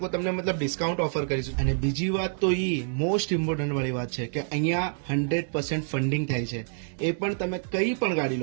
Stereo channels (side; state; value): left; silent; digital silence